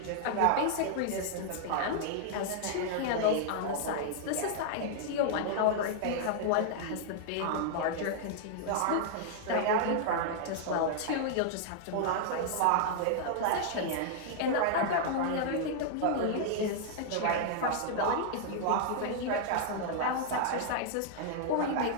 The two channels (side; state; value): both; different; correlation -0.01